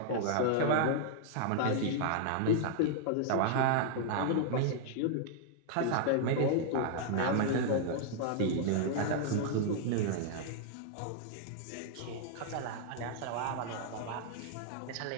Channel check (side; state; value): both; different; correlation -0.01